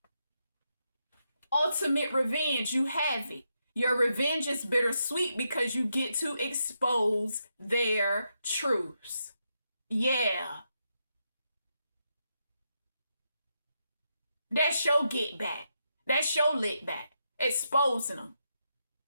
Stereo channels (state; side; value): inverted; both; correlation -0.83